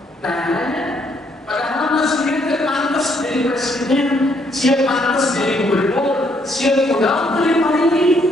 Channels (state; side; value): normal; both; correlation 0.71